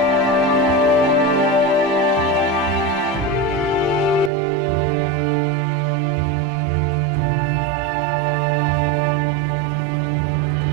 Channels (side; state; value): left; drops out; at 4.3 s